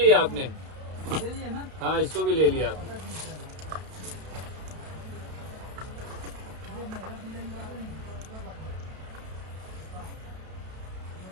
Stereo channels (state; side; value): late; left; 32 ms